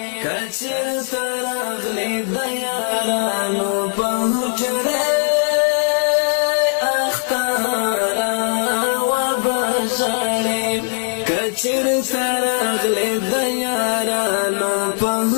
کچر ترغلې د یارانو په حجره اختارا و بشړې کچر ترغلې د یارانو په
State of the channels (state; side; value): silent; right; 66 dB below the other